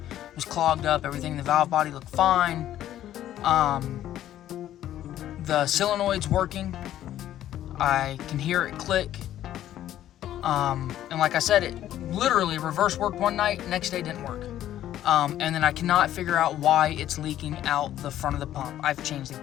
was clogged up. Everything in the valve body looked fine. The solenoid's working. I can hear it click. And like I said, it literally reverse worked one night, next day didn't work. And then I cannot figure out why it's leaking out the front of the pump. I've changed the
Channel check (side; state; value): right; quieter; 12.3 dB